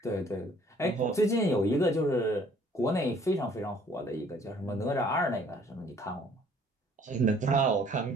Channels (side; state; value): both; normal; correlation 0.58